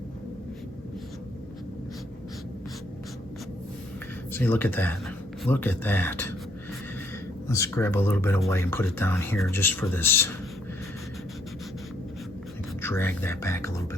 See, look at that. Look at that. Let's grab a little bit of white and put it down here just for this. Drag that back a little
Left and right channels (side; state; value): both; normal; correlation 0.67